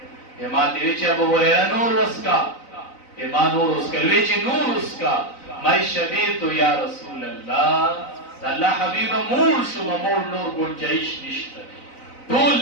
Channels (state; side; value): late; right; 4.0 ms